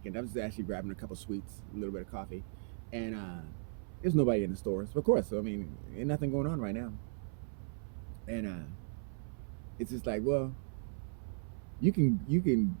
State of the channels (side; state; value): left; silent; 53 dB below the other